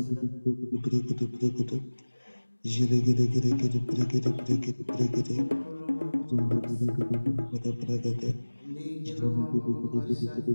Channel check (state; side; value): inverted; both; correlation -1.00